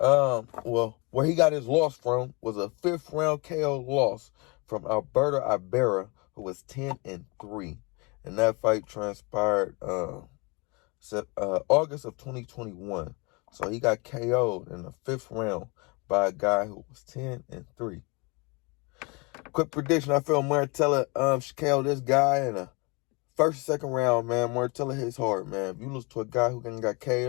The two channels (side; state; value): right; quieter; 29.0 dB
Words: he got his loss from was a 5th round KO loss from Alberto Ibarra, who was 10-3. And that fight transpired August of 2021. So he got KO'd in the 5th round by a guy who was 10-3. Quick prediction, I feel Martella should KO this guy in the 1st or 2nd round, man. Martella hits hard, man. If you lose to a guy who got KO'd, you